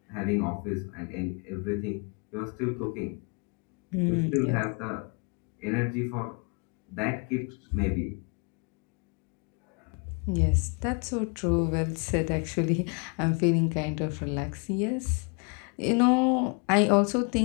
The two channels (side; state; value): right; quieter; 35.4 dB